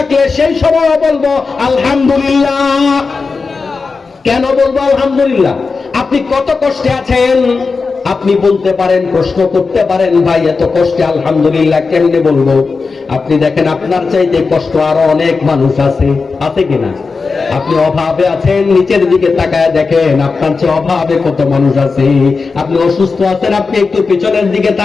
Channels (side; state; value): right; quieter; 4.5 dB